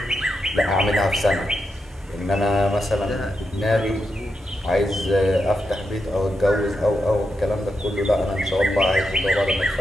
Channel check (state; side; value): normal; both; correlation 0.85